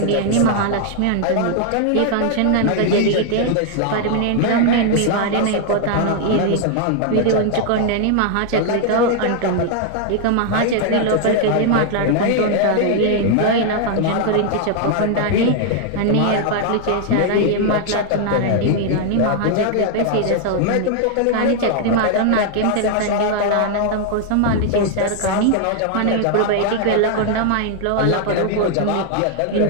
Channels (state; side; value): different; both; correlation 0.00